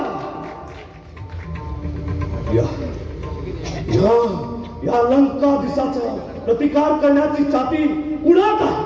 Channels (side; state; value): both; identical; correlation 1.00